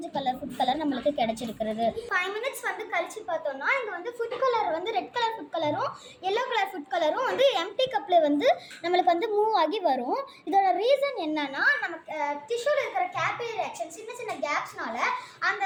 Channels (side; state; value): both; identical; correlation 1.00